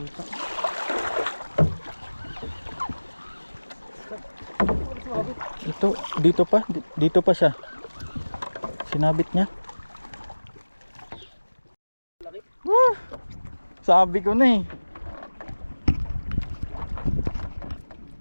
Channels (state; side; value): inverted; both; correlation -1.00